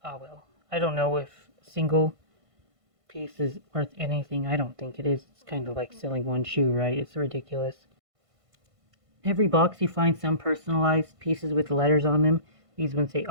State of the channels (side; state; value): left; late; 1.5 ms